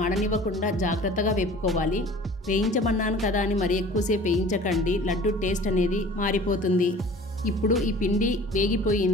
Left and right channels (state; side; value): normal; both; correlation 0.45